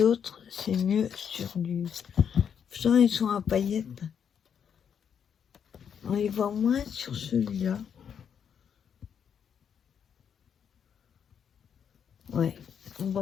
autres, c'est mieux sur du... Pourtant, ils sont à paillettes. On les voit moins sur celui-là. Ouais, on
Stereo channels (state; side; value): quieter; right; 7.8 dB